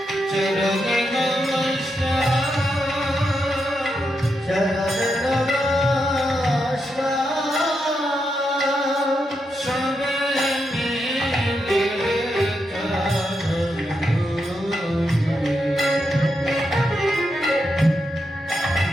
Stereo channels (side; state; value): both; normal; correlation 0.84